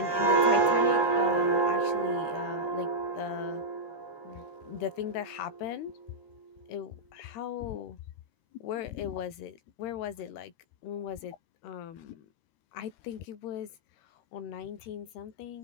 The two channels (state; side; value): late; right; 13 ms